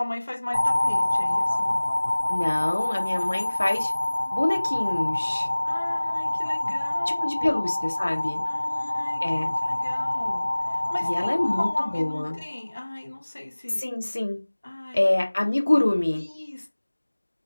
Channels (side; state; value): both; inverted; correlation -1.00